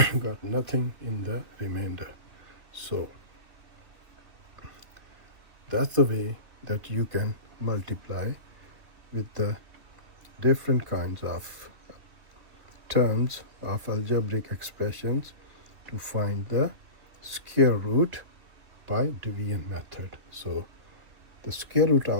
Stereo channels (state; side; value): late; left; 2.8 ms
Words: got nothing in the remainder. So that's the way that you can multiply with the different kinds of terms of algebraic expressions to find the square root by division method. So the square root